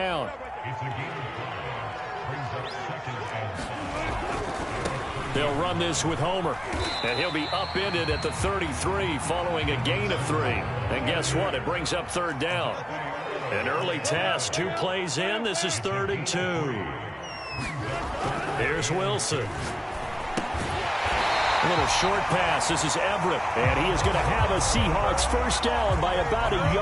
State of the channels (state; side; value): identical; both; correlation 1.00